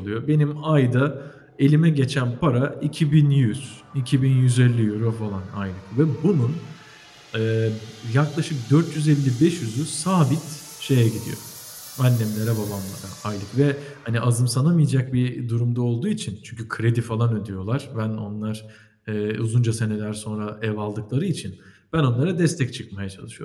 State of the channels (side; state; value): both; identical; correlation 1.00